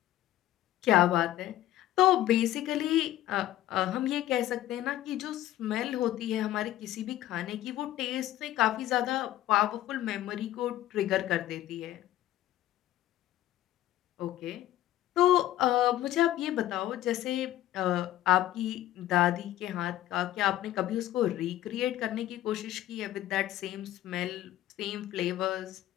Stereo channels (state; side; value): quieter; right; 13.8 dB